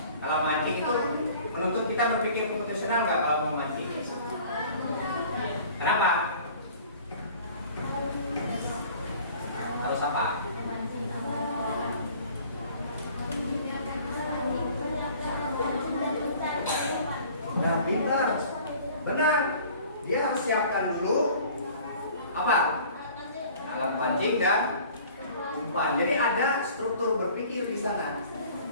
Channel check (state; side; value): inverted; both; correlation -0.49